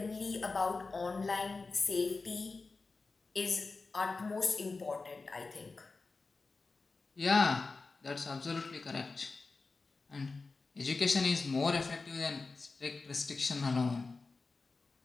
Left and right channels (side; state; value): right; quieter; 3.9 dB